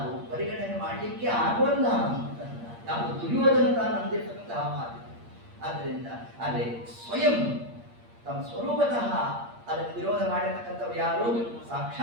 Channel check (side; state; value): left; late; 8.6 ms